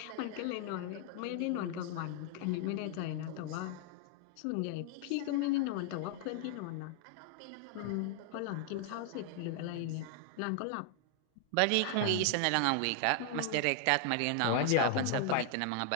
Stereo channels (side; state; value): both; different; correlation 0.00